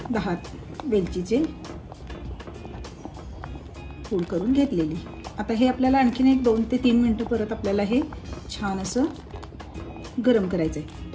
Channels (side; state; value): both; identical; correlation 1.00